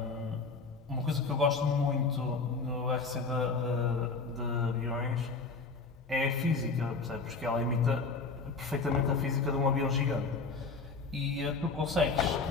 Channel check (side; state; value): right; quieter; 4.2 dB